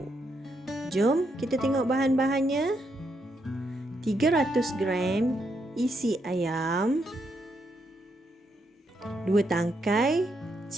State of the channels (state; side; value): normal; both; correlation 0.79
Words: Jom kita tengok bahan-bahannya. 300 gram isi ayam, 2 tangkai